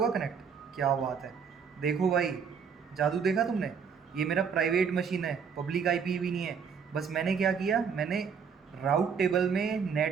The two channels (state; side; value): quieter; left; 6.5 dB